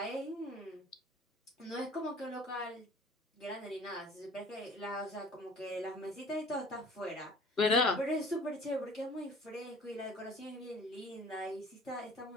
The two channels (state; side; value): normal; both; correlation 0.47